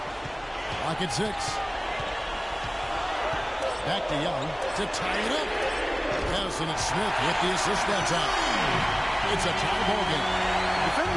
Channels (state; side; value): identical; both; correlation 1.00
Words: Lock at 6. Back to Young to tie it up. Yes, and it's Smith with the assist that time. It's a tie ball game.